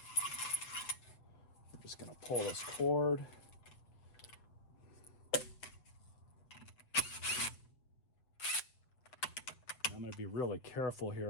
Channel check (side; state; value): right; late; 7.7 ms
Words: I'm just gonna pull this cord. I'm gonna be really careful